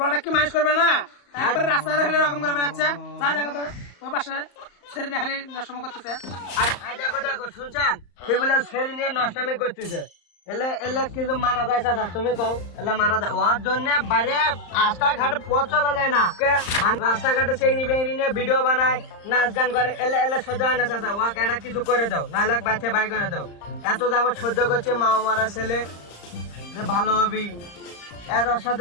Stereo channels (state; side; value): late; right; 35 ms